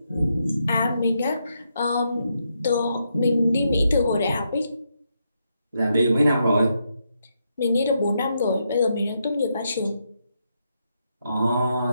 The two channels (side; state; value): both; inverted; correlation -0.80